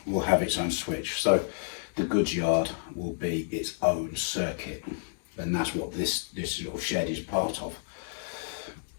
will have its own switch. So the goods yard will be its own circuit, and that's what this little shed is part of.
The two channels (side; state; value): right; silent; 58 dB below the other